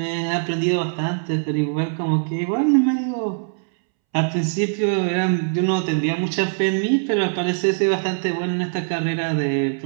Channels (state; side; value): silent; left; 64 dB below the other